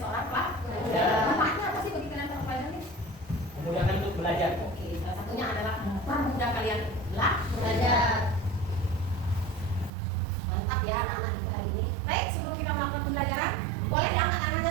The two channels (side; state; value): left; drops out; at 9.9 s